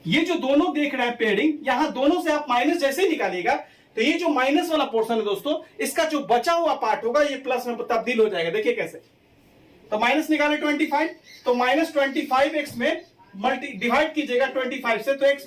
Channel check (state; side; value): identical; both; correlation 1.00